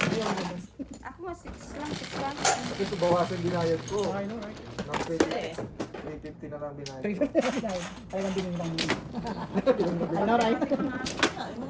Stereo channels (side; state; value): both; identical; correlation 1.00